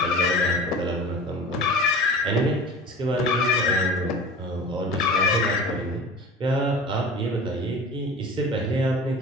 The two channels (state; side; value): normal; both; correlation 0.38